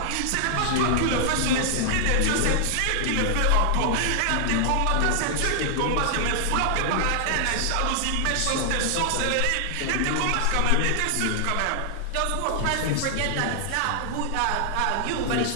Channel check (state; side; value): different; both; correlation 0.00